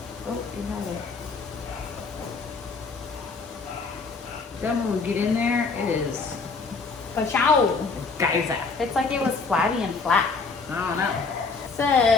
Oh, you have it. Then when we get in there, it is Ka-chow. geyser. It's like it was flabby and flat. I don't know.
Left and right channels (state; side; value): quieter; right; 4.4 dB